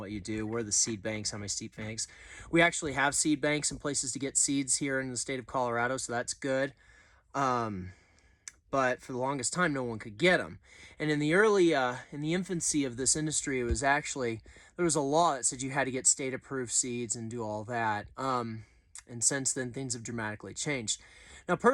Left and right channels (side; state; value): both; identical; correlation 1.00